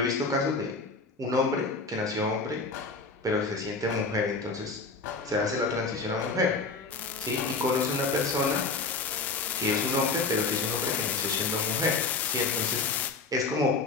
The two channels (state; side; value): quieter; right; 4.0 dB